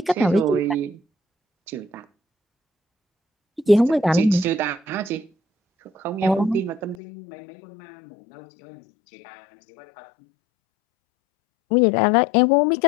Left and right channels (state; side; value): drops out; right; at 7.0 s